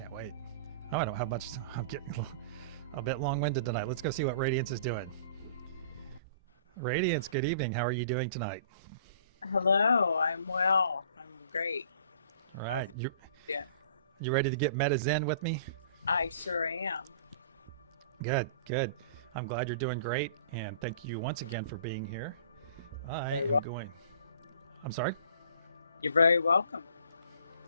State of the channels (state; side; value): inverted; both; correlation -0.49